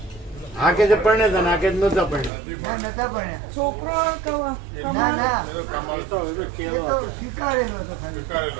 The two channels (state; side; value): drops out; left; at 2.3 s